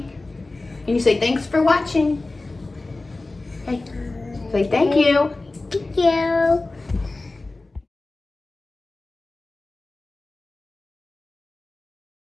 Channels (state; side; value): quieter; right; 3.2 dB